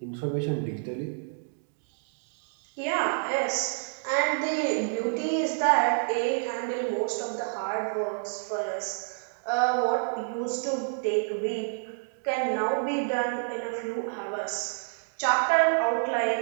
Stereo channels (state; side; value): silent; left; digital silence